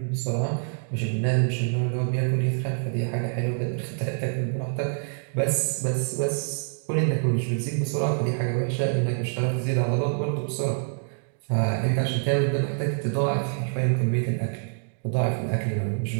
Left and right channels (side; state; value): left; silent; 61 dB below the other